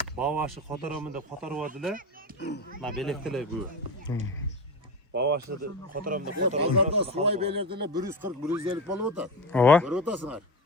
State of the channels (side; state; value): both; normal; correlation 0.24